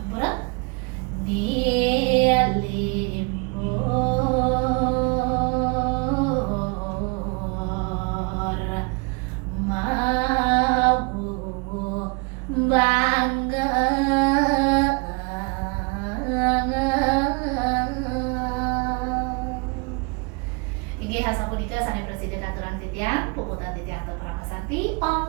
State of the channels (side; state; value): left; quieter; 31.4 dB